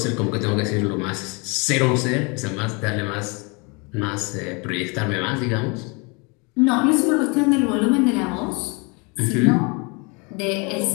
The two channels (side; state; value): right; quieter; 30.5 dB